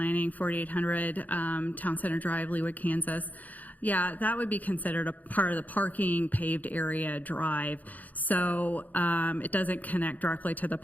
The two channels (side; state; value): right; late; 0.079 ms